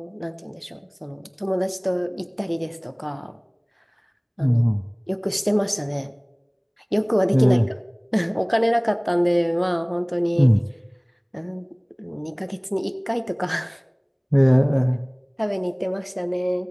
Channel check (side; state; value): both; identical; correlation 1.00